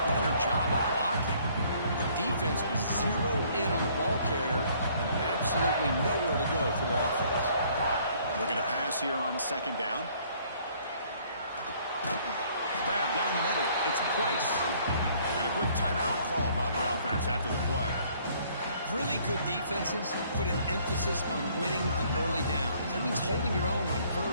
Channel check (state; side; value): inverted; both; correlation -0.61